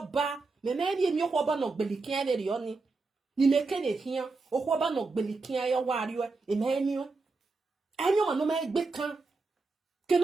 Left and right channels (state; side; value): quieter; left; 3.9 dB